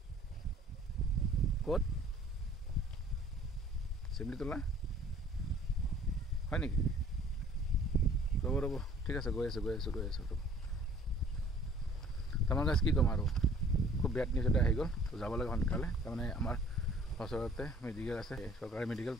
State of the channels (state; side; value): normal; both; correlation 0.53